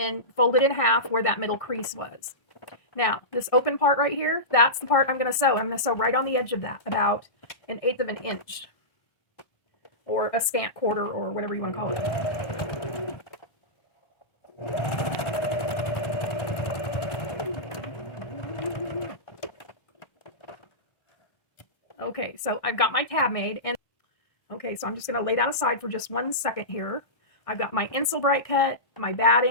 fold it in half where that middle crease was. Now, this open part right here, that's the part I'm going to sew. I'm going to sew right on the edge of that, about 1/8 of an inch, or a scant quarter, or whatever you want to call it. Okay, so I've got my tab made, and okay, so I'm just going to lay that aside for just 1 second here. I've got my Insul Bright cut, my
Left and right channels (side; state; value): right; late; 1.6 ms